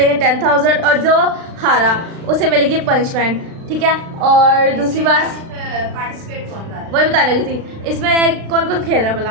10,000 और जो हारा उसे मिलेगी पनिशमेंट, ठीक है। और दूसरी बात पार्टिसिपेट कौन कर रहा है? वही बताने लगी थी, इसमें कौन कौन खेल रहा है भला।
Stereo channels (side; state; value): left; late; 36 ms